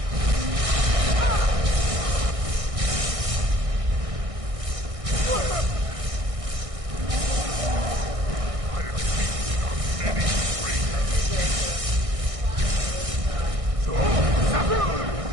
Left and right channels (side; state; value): left; late; 1.6 ms